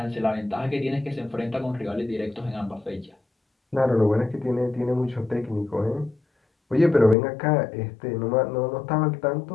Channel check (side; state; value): right; drops out; at 7.2 s